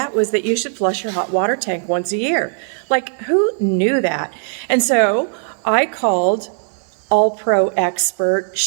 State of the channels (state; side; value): silent; left; 62 dB below the other